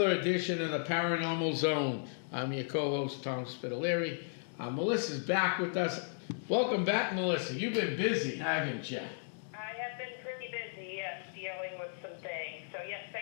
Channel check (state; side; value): silent; right; digital silence